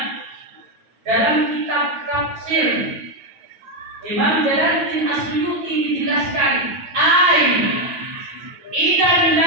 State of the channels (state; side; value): late; left; 9.4 ms